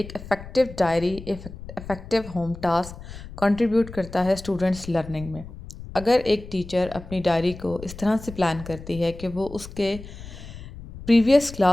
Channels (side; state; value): left; noise; rumble, 14 dB below the sound